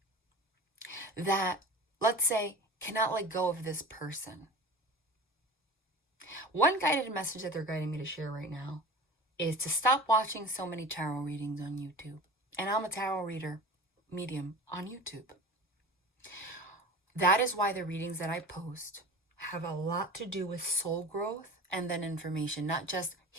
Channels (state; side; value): normal; both; correlation 0.35